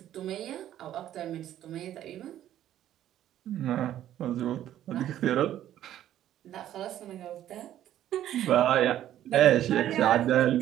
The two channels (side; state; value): left; quieter; 12.0 dB